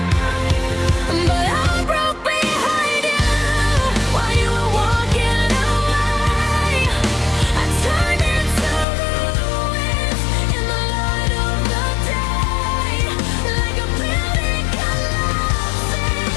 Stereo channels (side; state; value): right; drops out; at 8.8 s